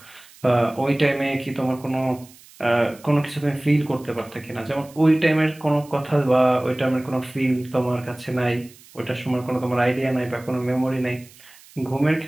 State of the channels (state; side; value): noise; right; hiss, 24 dB below the sound